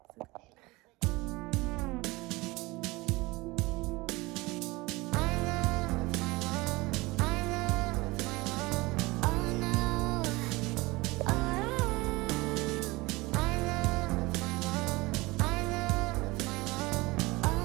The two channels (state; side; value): quieter; left; 22.4 dB